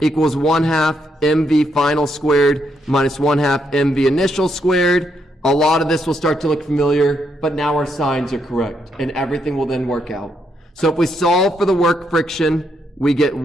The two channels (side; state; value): both; normal; correlation 0.77